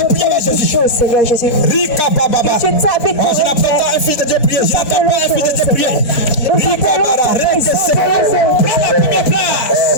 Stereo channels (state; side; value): late; right; 4.3 ms